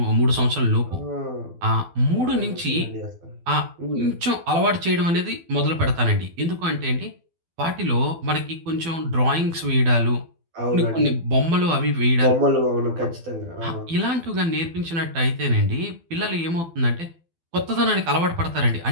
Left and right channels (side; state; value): left; late; 12 ms